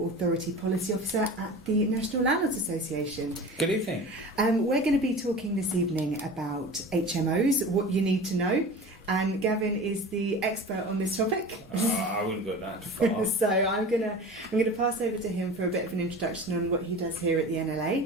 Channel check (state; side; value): normal; both; correlation 0.36